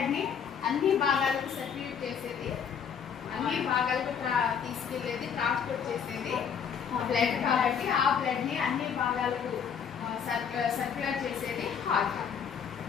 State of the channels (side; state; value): right; quieter; 7.4 dB